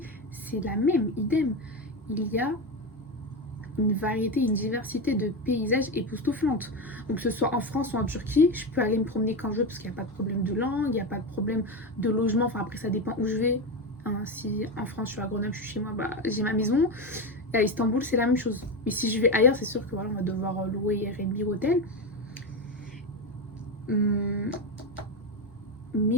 c'est la même, idem. Il y a une variété, une diversité de paysages époustouflantes. Donc que ce soit en France ou en Turquie, je peux aller me promener quand je veux parce qu'il n'y a pas de problème de langue, il n'y a pas de problème de logement. Enfin après ça dépend où je vais. Hein, si en France je suis à Grenoble, je suis chez moi, bah, j'ai ma maison. Et à Istanbul c'est la même chose. Mais si je vais ailleurs, c'est sûr que voilà, on va devoir louer Airbnb hôtel.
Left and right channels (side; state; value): both; normal; correlation 0.15